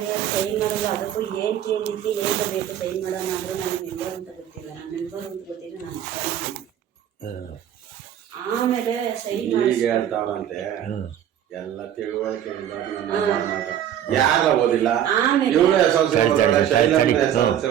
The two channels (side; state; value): left; quieter; 10.3 dB